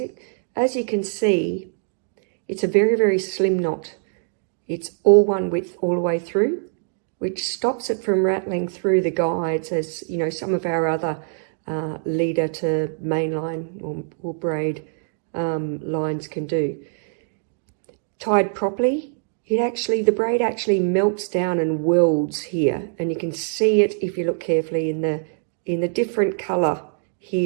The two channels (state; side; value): silent; left; digital silence